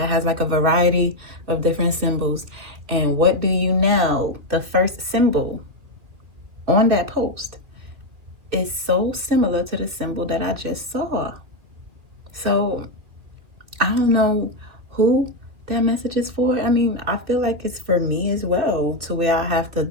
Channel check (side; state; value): left; late; 2.6 ms